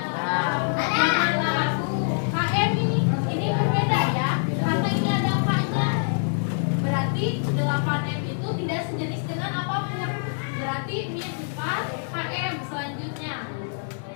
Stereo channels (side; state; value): right; silent; digital silence